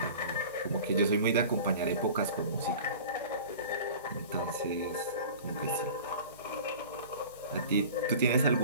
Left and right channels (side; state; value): both; inverted; correlation -0.40